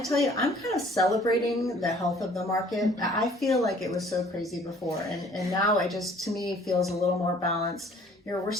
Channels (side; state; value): both; normal; correlation 0.55